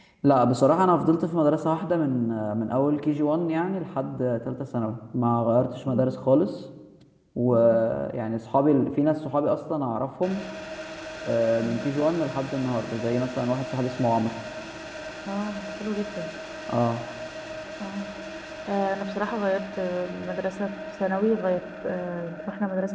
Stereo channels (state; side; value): identical; both; correlation 1.00